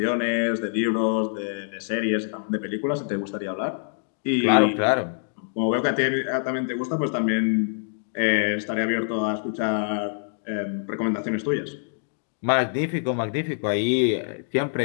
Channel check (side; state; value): right; silent; digital silence